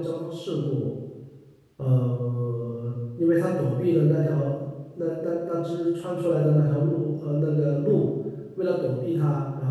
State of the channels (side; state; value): both; identical; correlation 1.00